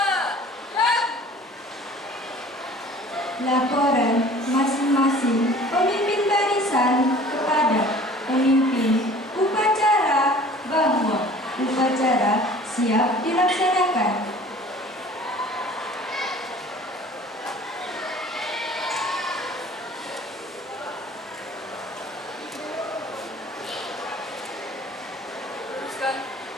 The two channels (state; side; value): normal; both; correlation 0.47